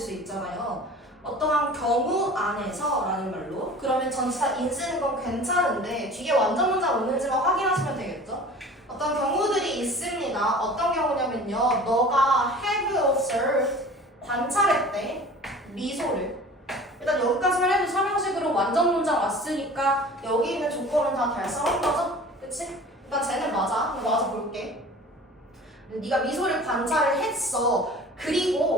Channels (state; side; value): normal; both; correlation 0.42